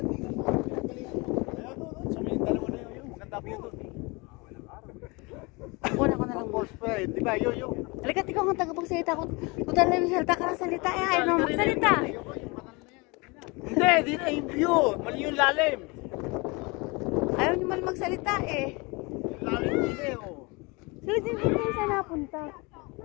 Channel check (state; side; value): quieter; right; 27.0 dB